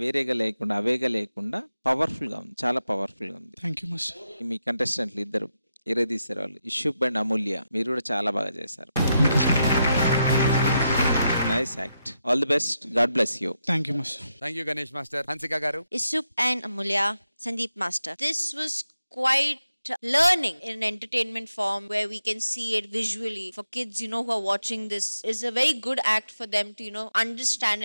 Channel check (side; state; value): both; inverted; correlation -0.85